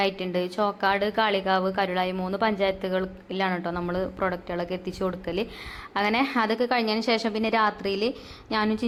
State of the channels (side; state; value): both; identical; correlation 1.00